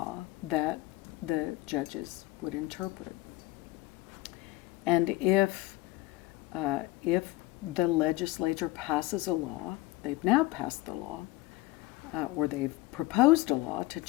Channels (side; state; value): right; quieter; 18.9 dB